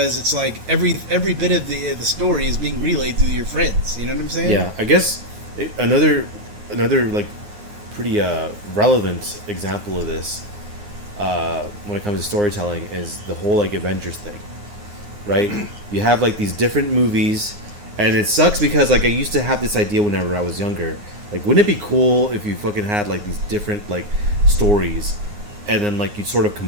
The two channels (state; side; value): late; left; 9.7 ms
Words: it's like every bit of the story is being relayed through your friends. You know what I'm saying? Yeah, I guess another like pretty relevant example of this when it comes to storytelling is the whole like Avengers thing, right? You have like these different movies, and it sucks because like I used to have this idea whenever I was younger. Like, wouldn't it be cool if you fucking had like these different like stories, and then like you sort of